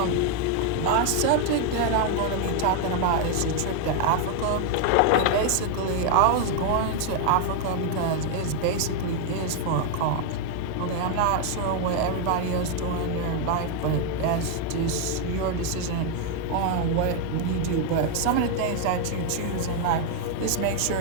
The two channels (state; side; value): different; both; correlation 0.01